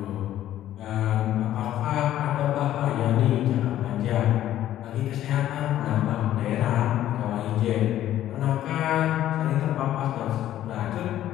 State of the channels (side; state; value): right; quieter; 12.6 dB